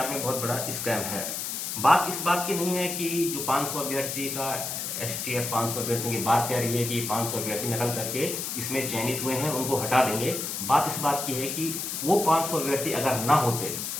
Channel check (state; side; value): noise; left; hiss, 4 dB below the sound